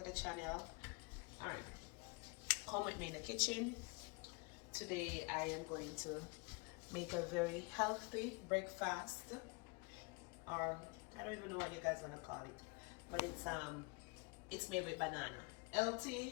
the channel. Alright, come with me in the kitchen. Today I am going to make a very healthy breakfast, or I don't even know what you guys want to call it, but it's made with banana. Healthy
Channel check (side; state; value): right; quieter; 29.8 dB